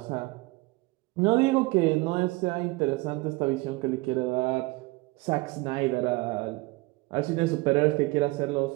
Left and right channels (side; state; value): left; quieter; 23.0 dB